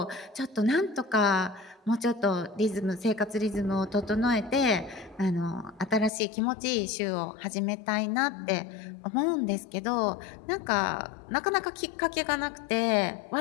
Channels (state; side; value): drops out; right; at 6.1 s